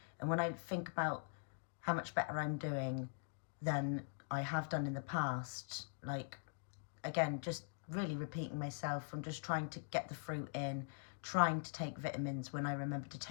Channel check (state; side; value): silent; right; digital silence